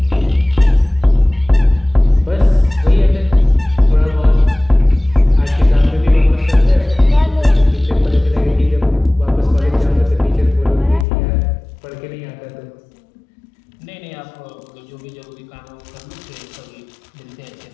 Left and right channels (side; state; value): right; drops out; at 11.1 s